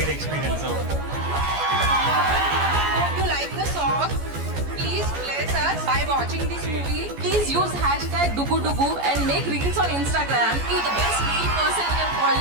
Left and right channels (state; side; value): late; left; 14 ms